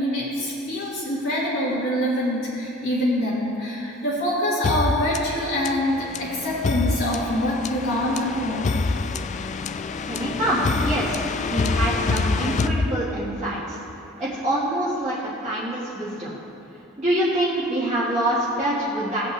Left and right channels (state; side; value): normal; both; correlation 0.47